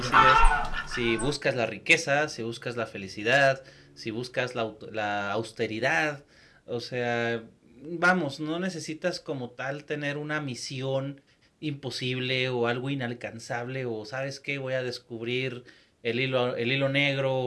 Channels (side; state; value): both; identical; correlation 1.00